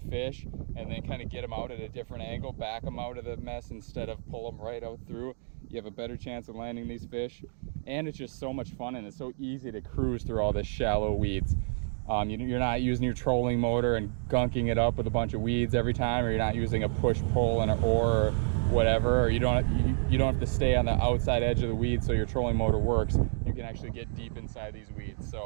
and then kind of get them out at a different angle, back them out of the mess instead of pull them right out through, you have a better chance of landing these fish. And it's just so much fun, and it's so easy to cruise through all this shallow weeds. You're not using your trolling motor and gunking it up with a bunch of weeds every time, or you're not using a push-pull and an oar or whatever, or you don't have to stay on the outside edge of the weeds so your trolling motor works. You can actually get deep inside these weeds.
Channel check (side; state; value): left; silent; digital silence